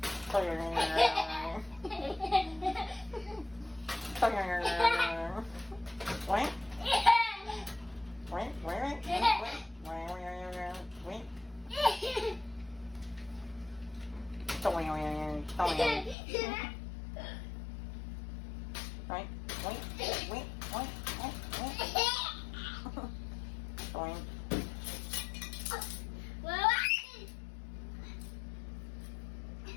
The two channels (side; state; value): right; drops out; at 16.2 s